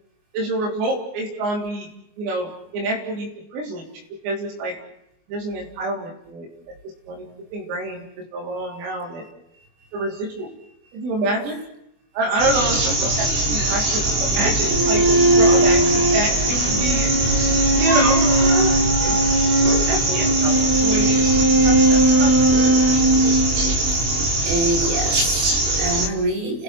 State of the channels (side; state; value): left; late; 24 ms